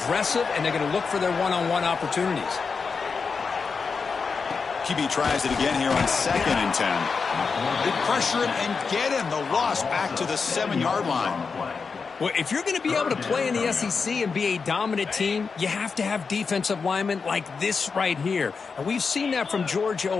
and they're going to look for their one-on-one opportunities. QB tries it again here on 2nd and 10. They pressure him and get him. The loss back to the 7-yard line. Well, if you're going to be able to play in the SEC and be a dominant team, you have to have defensive linemen like this right here. And we've seen that from Georgia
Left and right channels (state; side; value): quieter; right; 5.1 dB